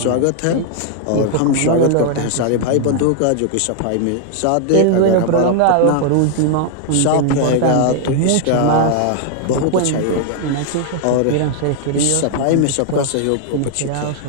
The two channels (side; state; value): both; different; correlation 0.00